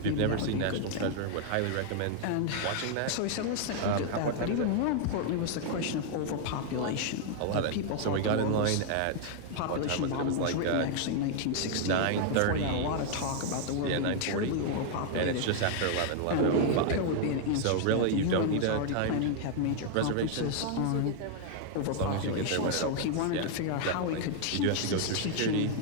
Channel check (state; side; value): different; both; correlation 0.00